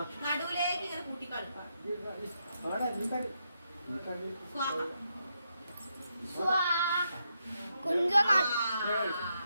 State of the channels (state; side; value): inverted; both; correlation -0.81